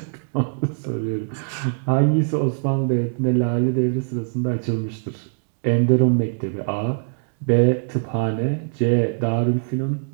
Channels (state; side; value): silent; left; digital silence